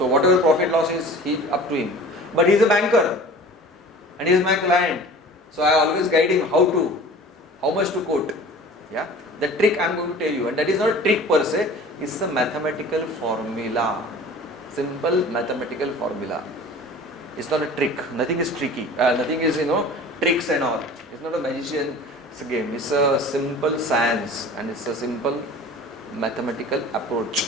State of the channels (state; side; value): normal; both; correlation 0.42